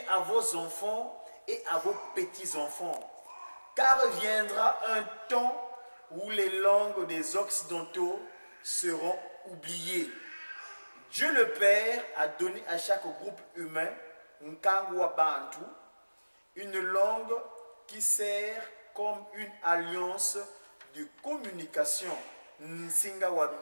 à vos enfants et à vos petits-enfants, car viendra un temps où les langues des Occidentaux seront oubliées. Dieu le Père a donné à chaque groupe humain, Nkangwa Bantu, une langue qui sert comme une alliance de communication. Nsingawa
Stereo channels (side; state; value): both; inverted; correlation -1.00